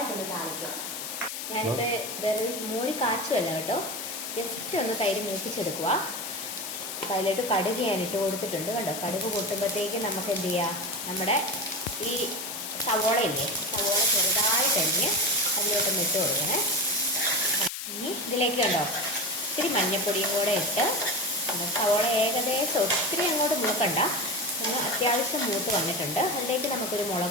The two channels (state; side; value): noise; left; hiss, 6 dB below the sound